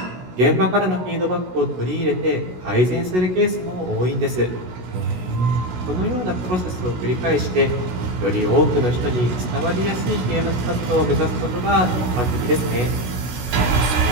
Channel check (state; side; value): late; left; 16 ms